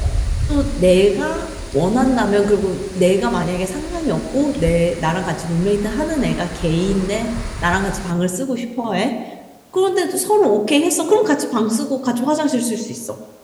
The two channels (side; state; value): both; identical; correlation 1.00